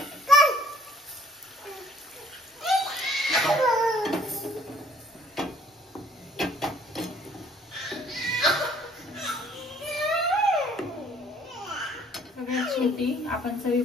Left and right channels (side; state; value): both; normal; correlation 0.58